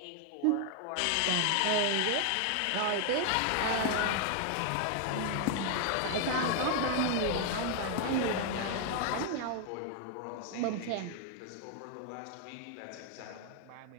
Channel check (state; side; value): different; both; correlation 0.01